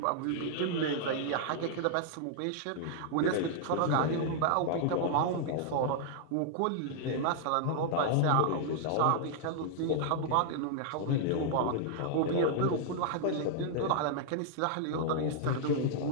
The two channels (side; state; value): both; different; correlation -0.01